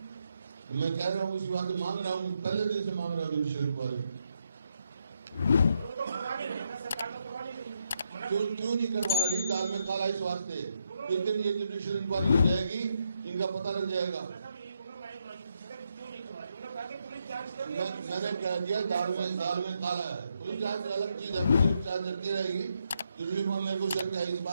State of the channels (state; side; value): inverted; both; correlation -0.79